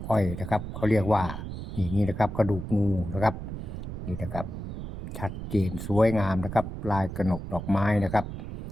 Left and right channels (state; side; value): noise; right; rumble, 8 dB below the sound